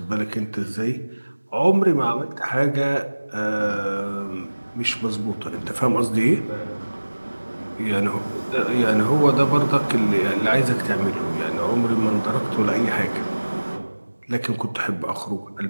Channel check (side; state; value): both; inverted; correlation -1.00